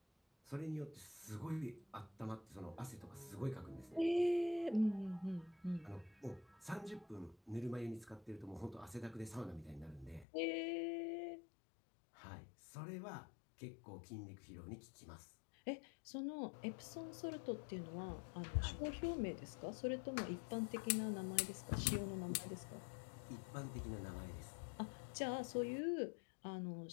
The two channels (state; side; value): drops out; right; at 10.2 s